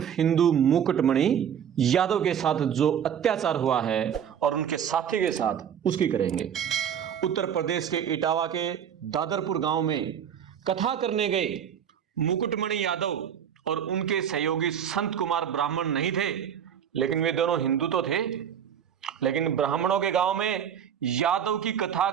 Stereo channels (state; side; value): quieter; left; 8.7 dB